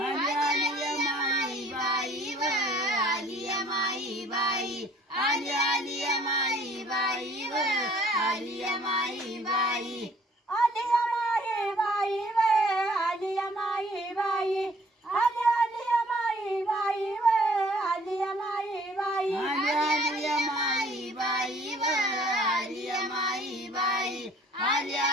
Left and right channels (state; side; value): normal; both; correlation 0.57